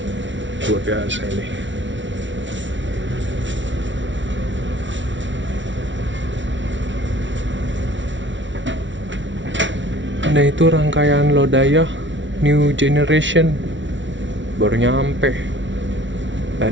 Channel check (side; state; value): left; late; 0.55 ms